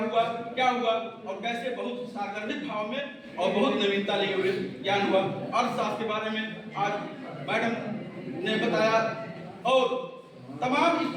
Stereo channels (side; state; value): both; identical; correlation 1.00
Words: हुआ, क्या हुआ और कैसे बहुत सागर्भिक भाव में और बहुत नवीनता लिए हुए ज्ञान हुआ। अर्थशास्त्र के बारे में आज मैडम ने बताया और तमाम इस